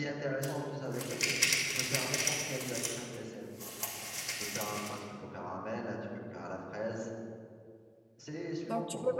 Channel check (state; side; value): identical; both; correlation 1.00